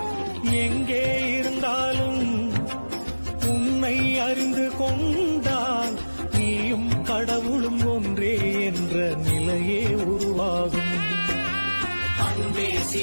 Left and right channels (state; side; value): inverted; both; correlation -1.00